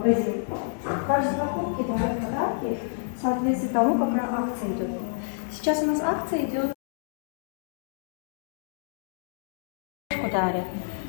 Сейчас у нас акция идет,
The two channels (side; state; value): right; silent; digital silence